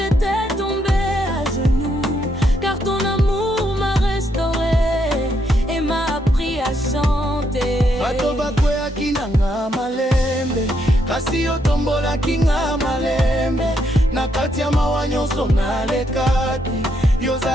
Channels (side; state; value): both; normal; correlation 0.76